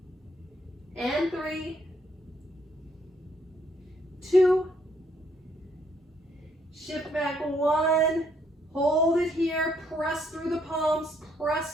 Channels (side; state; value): both; normal; correlation 0.70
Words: and 3, 2, shift back 1, hold it here, press through the palms,